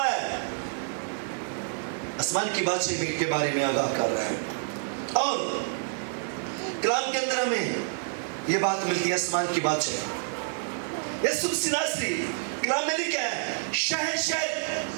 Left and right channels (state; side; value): silent; left; digital silence